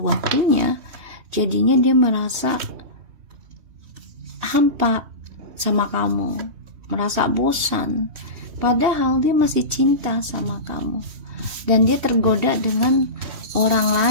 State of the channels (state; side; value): late; left; 3.2 ms